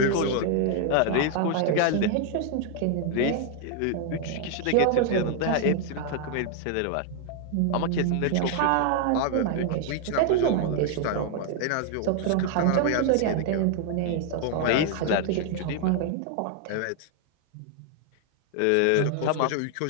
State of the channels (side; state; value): both; different; correlation 0.00